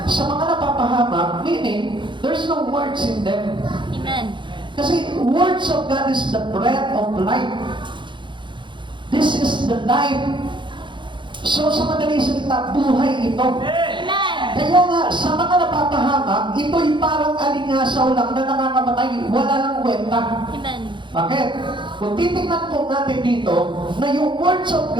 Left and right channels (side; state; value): left; late; 0.23 ms